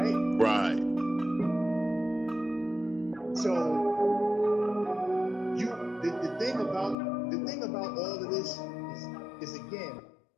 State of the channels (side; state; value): right; drops out; at 7.0 s